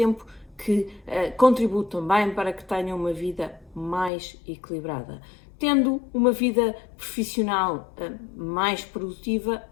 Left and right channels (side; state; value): right; drops out; at 4.1 s